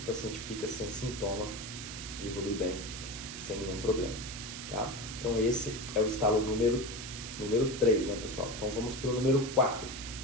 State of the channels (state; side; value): noise; right; hiss, 9 dB below the sound